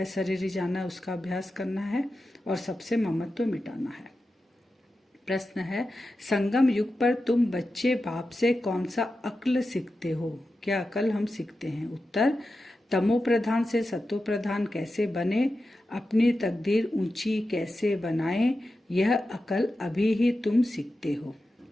जाना है, उसका अभ्यास करना है, और सबसे ममत्व मिटाना है। प्रश्न है, संगम युग पर तुम बच्चे बाप से कौन सा अक्ल सीखते हो? क्या अकल हम सीखते हैं? उत्तर, तमो प्रधान से सतो प्रधान कैसे बने, अपनी तकदीर ऊंची कैसे बनाएं, यह अकल अभी ही तुम सीखते हो।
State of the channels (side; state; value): both; normal; correlation 0.91